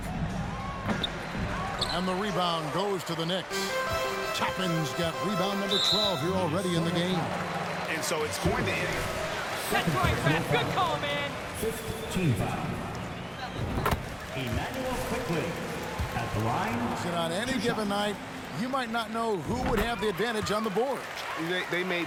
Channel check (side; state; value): both; identical; correlation 1.00